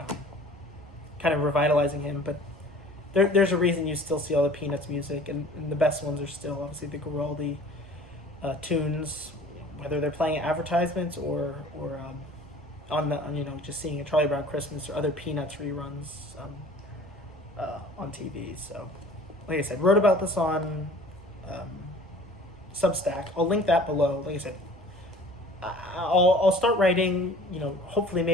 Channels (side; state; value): both; normal; correlation 0.47